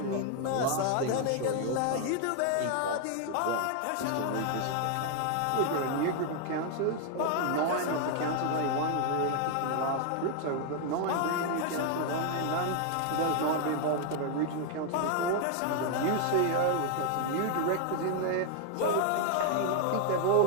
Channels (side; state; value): both; different; correlation 0.00